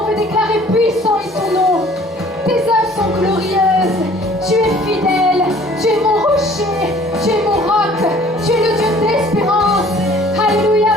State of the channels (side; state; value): both; normal; correlation 0.53